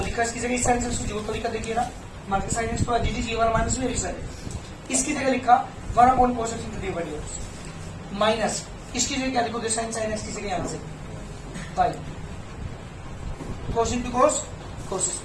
लिखा इसकी जगह sin x जो तरीका देखिए ना, माइनस sin x तो एज डी, ये वाला माइनस में लिखा है, इसकी जगह लिखा 1 cos x into D by dx minus इसकी जगह क्या लिखोगे, sin x की जगह यहाँ से y cos into cos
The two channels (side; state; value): both; identical; correlation 1.00